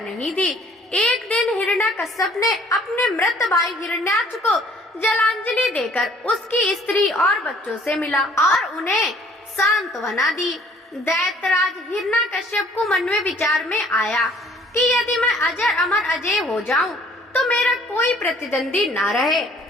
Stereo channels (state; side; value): normal; both; correlation 0.57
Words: नहीं थी। एक दिन हिरण्यकश्यप ने अपने मृत भाई हिरण्याक्ष को जलांजलि देकर उसकी स्त्री और बच्चों से मिला और उन्हें सांत्वना दी। दैत्यराज हिरण्यकश्यप को मन में विचार में आया कि यदि मैं अजर अमर अजय हो जाऊं तो मेरा कोई प्रतिद्वंदी ना रहे